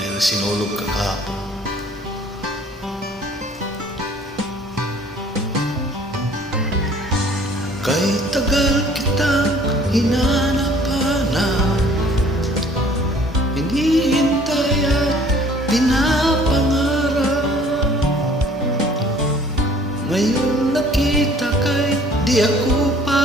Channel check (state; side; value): normal; both; correlation 0.54